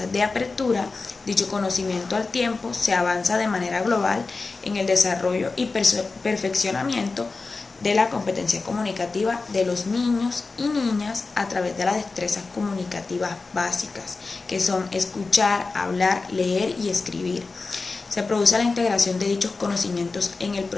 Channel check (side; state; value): right; quieter; 3.9 dB